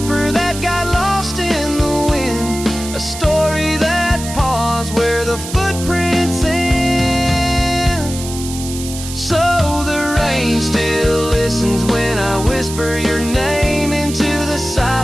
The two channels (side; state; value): right; noise; hiss, 10 dB below the sound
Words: that got lost in the wind? A story that paused where the footprints end? So the rain still listens when I whisper your name into the